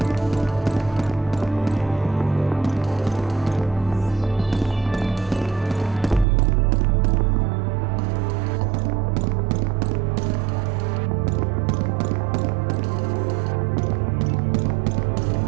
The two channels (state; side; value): drops out; left; at 6.2 s